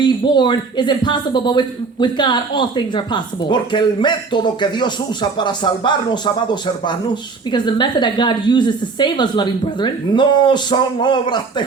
is impossible, but with God all things are possible. Porque el método que Dios usa para salvarnos, amados hermanos, Because the method that God uses to save us, loving brethren, no son obras de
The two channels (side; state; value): left; quieter; 4.5 dB